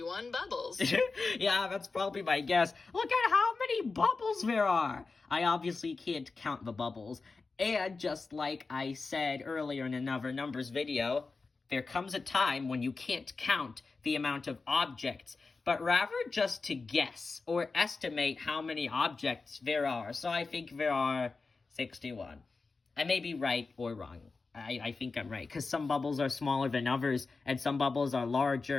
bubbles. Yeah, that's probably my guess. Look at how many bubbles there are. I obviously can't count the bubbles. And just like I said earlier in another numbers video, there comes a time when you can't count the amount of objects, but rather just to guess or estimate how many objects there are. So I think there are 61. I may be right or wrong. I think I'm right, because some bubbles are smaller than others, and some bubbles are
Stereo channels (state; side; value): quieter; right; 4.1 dB